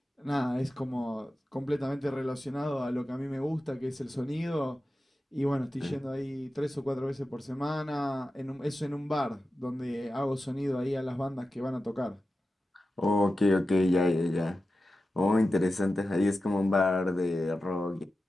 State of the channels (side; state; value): both; normal; correlation 0.92